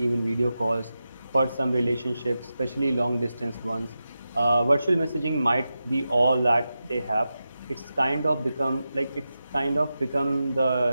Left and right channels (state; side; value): inverted; both; correlation -0.91